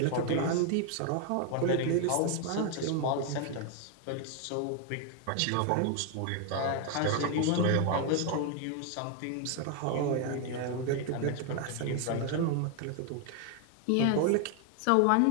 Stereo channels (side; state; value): both; different; correlation 0.01